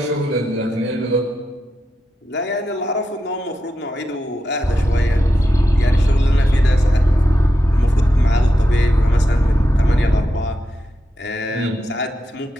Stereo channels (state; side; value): normal; both; correlation 0.87